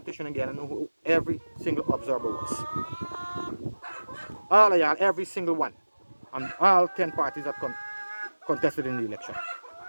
again know who every single observer was. All of y'all, every single one, and all 10 parties that contested in the election,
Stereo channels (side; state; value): both; inverted; correlation -1.00